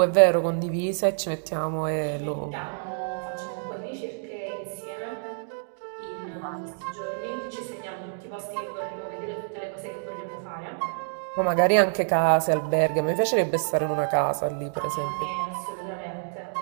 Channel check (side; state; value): left; silent; digital silence